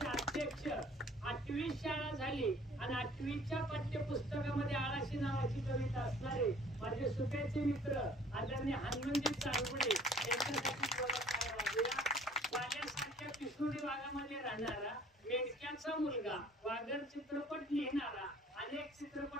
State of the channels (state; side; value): normal; both; correlation 0.53